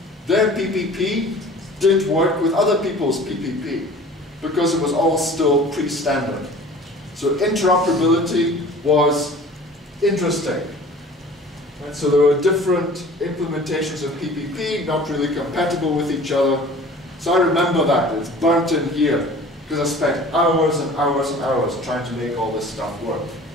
their PPP didn't work with other people's PPP because it was all still pre-standard. So interoperability was interesting. And so there were different implementations of PPP, not really compatible with each other. So I remember that, it's burnt in here, because I spent hours and hours and hours trying to make all this stuff work.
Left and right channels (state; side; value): normal; both; correlation 0.45